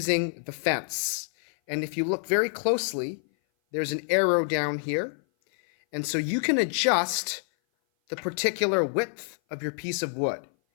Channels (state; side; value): silent; right; 57 dB below the other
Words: the fence. And if you look very closely, there's an arrow down here. And so you can adjust the particular width of your piece of wood.